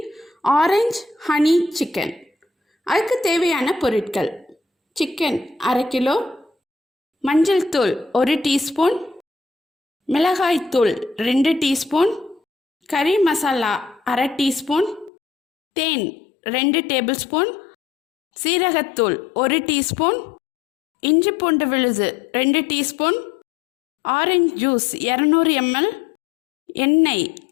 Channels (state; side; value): drops out; right; at 15.1 s